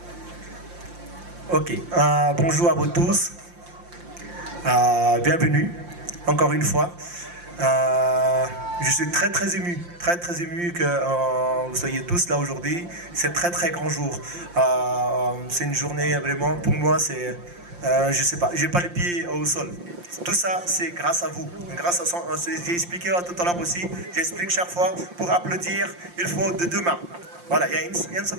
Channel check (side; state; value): left; late; 5.7 ms